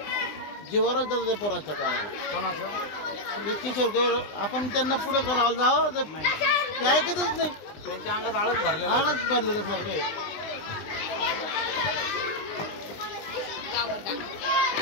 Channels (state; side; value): late; right; 20 ms